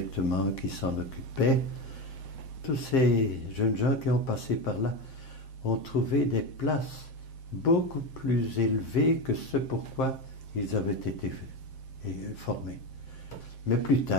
qui s'en occupait. Tous ces jeunes gens qui ont passé par là ont trouvé des places beaucoup plus élevées que ce pourquoi ils avaient été formés. Mais plus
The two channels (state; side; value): late; right; 7.6 ms